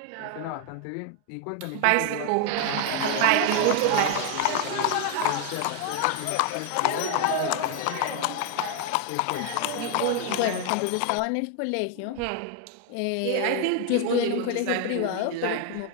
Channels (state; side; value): different; both; correlation 0.00